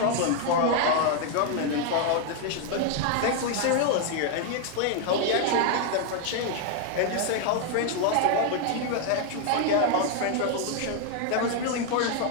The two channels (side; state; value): both; different; correlation 0.00